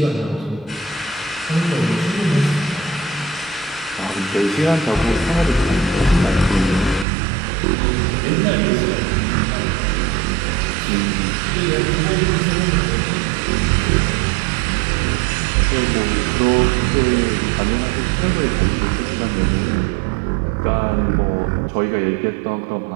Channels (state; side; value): drops out; left; at 7.1 s